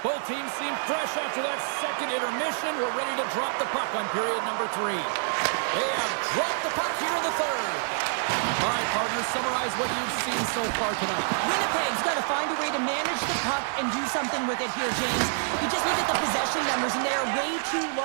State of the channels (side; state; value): left; silent; 60 dB below the other